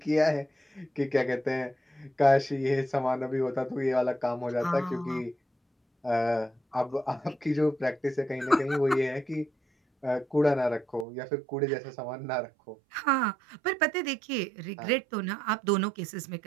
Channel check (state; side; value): drops out; left; at 11.1 s